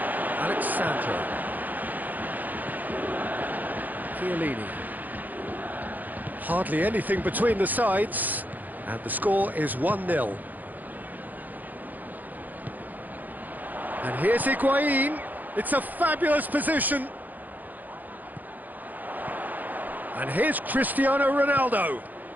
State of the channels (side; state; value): left; late; 0.083 ms